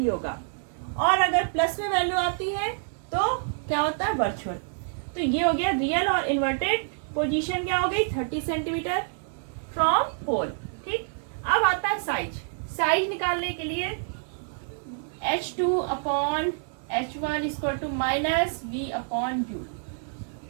होगा। और अगर प्लस में वैल्यू आती है तो क्या होता है, वर्चुअल। तो ये हो गया रियल और इन्वर्टेड पोजीशन क्या हो गई 30 सेंटीमीटर फ्रॉम पोल। ठीक, अब आता है साइज। साइज निकालने के लिए H2 upon H1 equal to minus V upon U।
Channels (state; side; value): silent; left; digital silence